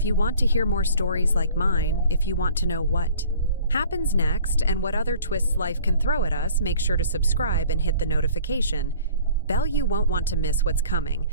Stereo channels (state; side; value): inverted; both; correlation -0.49